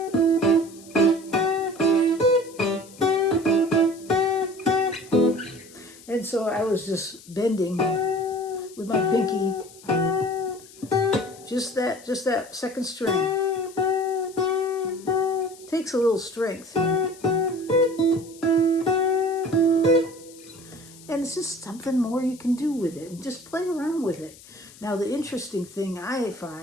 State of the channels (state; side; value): noise; left; hiss, 21 dB below the sound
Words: And so I was just bending with my pinky. Just that 2nd string. Takes a little strength. And it's just something more you can do with it. And just play around with it. Now the interesting thing I